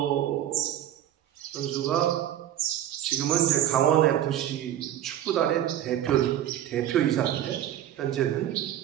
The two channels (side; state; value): left; quieter; 11.7 dB